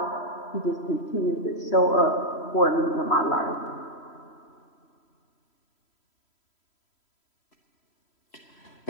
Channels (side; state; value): right; late; 3.0 ms